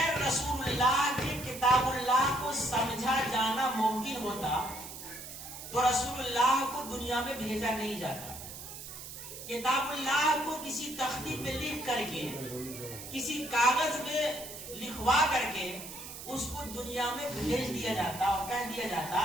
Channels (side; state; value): right; noise; hiss, 11 dB below the sound